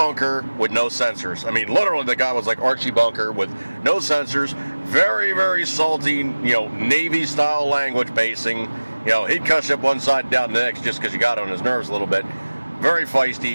with no censors. I mean, literally, the guy was like Archie Bunker with no censors. Very, very salty, Navy-style language basing. He'd cuss you up one side and down the next just because you got on his nerves a little bit. Very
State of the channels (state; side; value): inverted; both; correlation -1.00